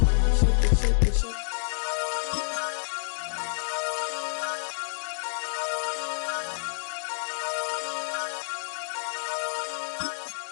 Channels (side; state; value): right; silent; 59 dB below the other